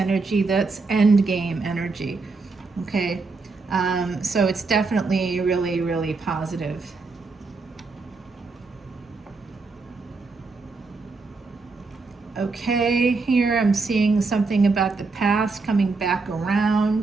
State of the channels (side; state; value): left; quieter; 4.0 dB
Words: that's end game energy. Okay, so it's definitely really, really positive. Okay, here I'm seeing something about the past coming back